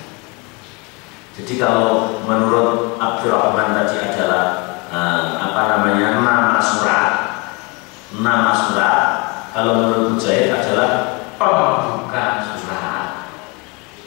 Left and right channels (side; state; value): right; quieter; 29.1 dB